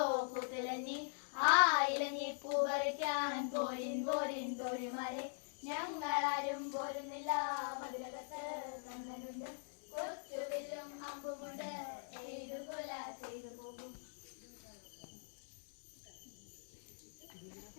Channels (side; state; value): right; silent; digital silence